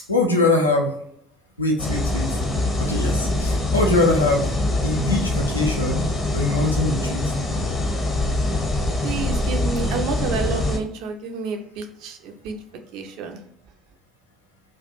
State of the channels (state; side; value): normal; both; correlation 0.47